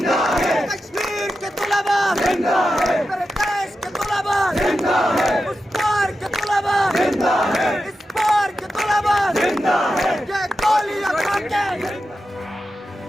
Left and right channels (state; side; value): normal; both; correlation 0.90